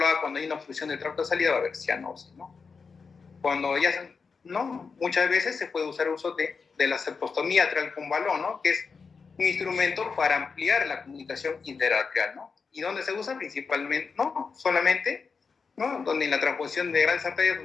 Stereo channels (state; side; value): quieter; right; 5.1 dB